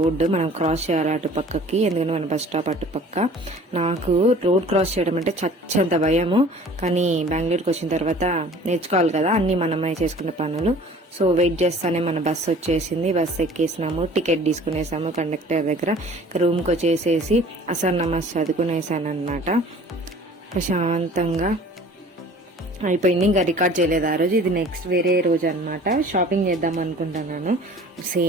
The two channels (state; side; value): normal; both; correlation 0.48